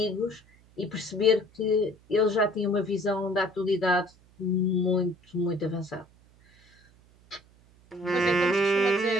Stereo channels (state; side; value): noise; right; hum, 29 dB below the sound